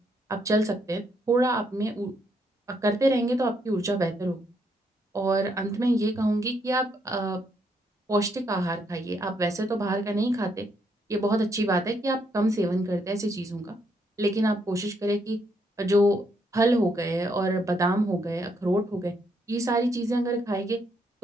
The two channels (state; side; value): normal; both; correlation 0.74